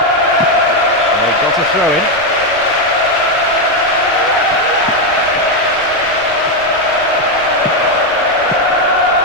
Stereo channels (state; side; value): noise; right; rumble, 21 dB below the sound